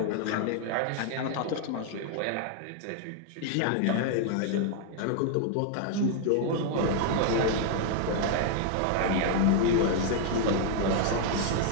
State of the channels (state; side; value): different; both; correlation 0.00